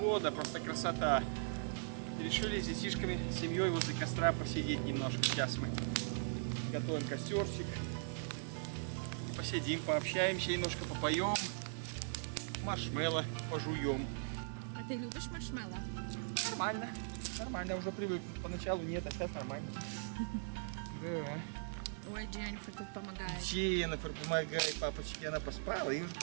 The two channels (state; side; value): silent; left; digital silence